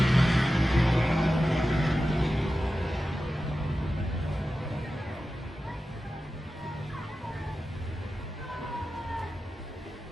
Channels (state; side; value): normal; both; correlation 0.93